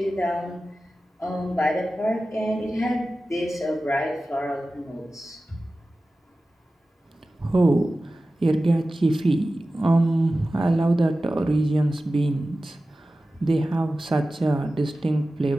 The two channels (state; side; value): normal; both; correlation 0.95